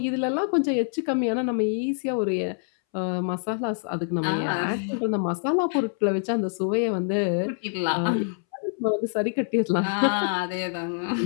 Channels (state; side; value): silent; right; 61 dB below the other